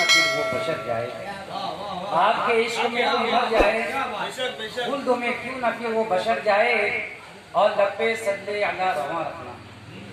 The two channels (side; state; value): both; identical; correlation 1.00